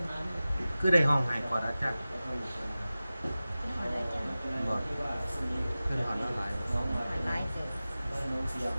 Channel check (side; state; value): both; inverted; correlation -0.96